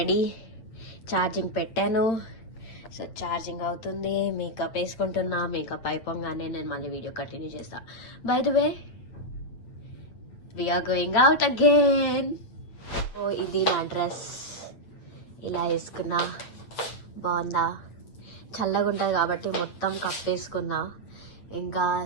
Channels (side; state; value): right; late; 8.6 ms